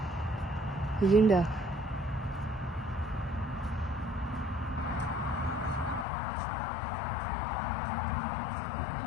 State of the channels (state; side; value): drops out; right; at 6.1 s